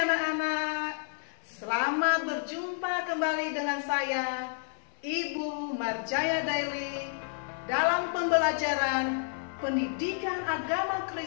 anak-anak. Selamat berjumpa kembali dengan saya, Ibu Marjaya Daily, dalam pembelajaran Pendidikan Agama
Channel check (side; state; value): right; silent; 58 dB below the other